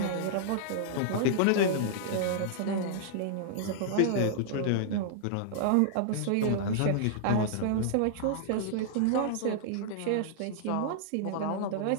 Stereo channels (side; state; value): both; different; correlation -0.01